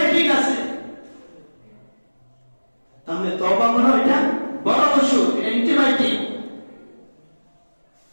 ঠিক আছে। তাহলে তওবা মনে এটা বড় অসুখ, অ্যান্টিবায়োটিক।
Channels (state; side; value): inverted; both; correlation -1.00